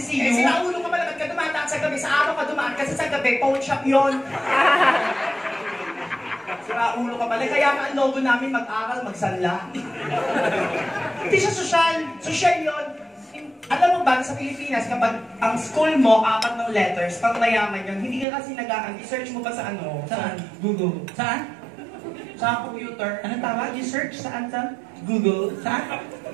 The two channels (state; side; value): drops out; left; at 18.2 s